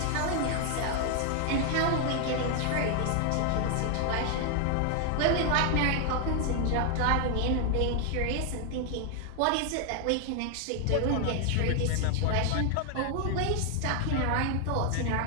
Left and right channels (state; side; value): different; both; correlation 0.00